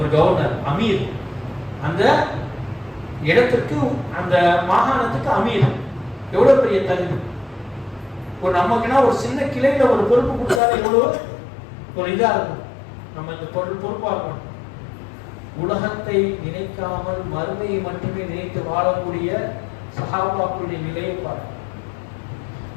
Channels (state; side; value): drops out; right; at 10.6 s